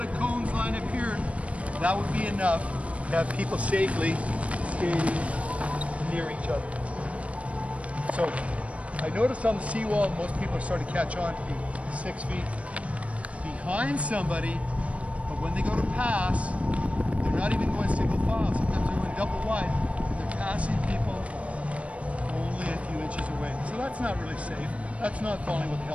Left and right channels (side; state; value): left; late; 0.064 ms